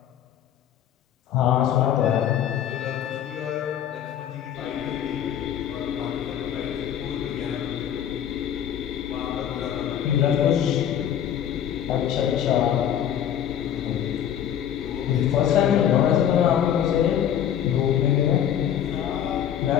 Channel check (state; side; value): quieter; right; 9.9 dB